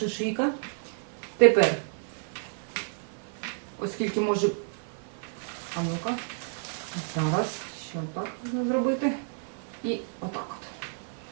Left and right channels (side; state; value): left; silent; 58 dB below the other